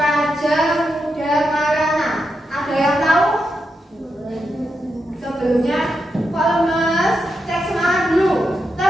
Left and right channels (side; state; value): both; normal; correlation 0.86